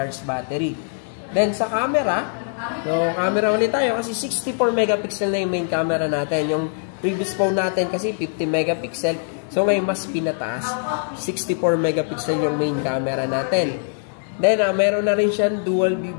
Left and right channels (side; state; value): right; silent; digital silence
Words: battery. Then, sa camera, so, camera ulit tayo kasi 64 megapixel na yung main camera natin. Yung previous phone natin kasi 50 megapixel. So, ngayon mas pinataas. 64 megapixel yung main camera natin. Then, meron na rin siyang dual view